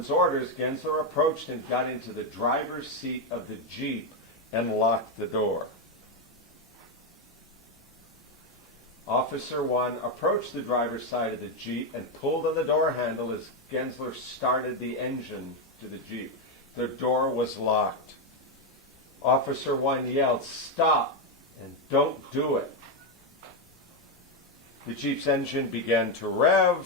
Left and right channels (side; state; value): both; normal; correlation 0.06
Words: orders, Gensler approached and got into the driver's seat of the Jeep and locked the door. Officer 1 approached the driver's side of the Jeep and pulled on the door handle as Gensler started the engine to the Jeep. The door was locked. Officer 1 yelled, "Stop, and don't do it." The Jeep's engine began to